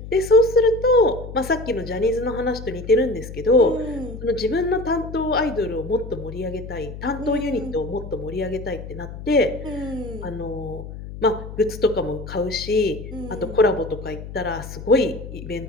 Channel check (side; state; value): left; noise; hum, 11 dB below the sound